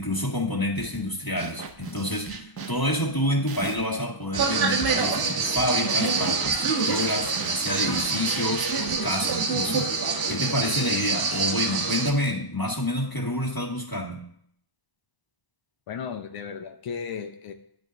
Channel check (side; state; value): right; late; 1.0 ms